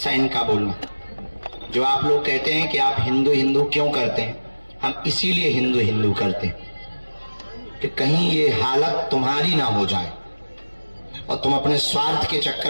इनका बोलना। जो आप लोग कहते हैं कि आप हिंदू हिंदू क्यों करते हैं, हम इसीलिए हिंदू हिंदू करते हैं कि कहीं ये हालत तुम्हारी ना हो जाए और तुम अपने स्वार्थ के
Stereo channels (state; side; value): inverted; both; correlation -1.00